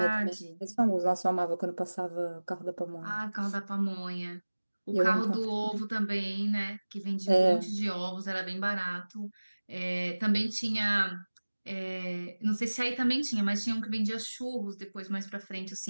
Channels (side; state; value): both; inverted; correlation -1.00